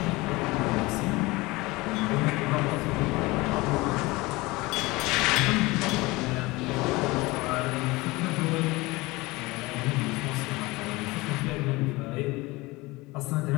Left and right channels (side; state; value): right; quieter; 22.1 dB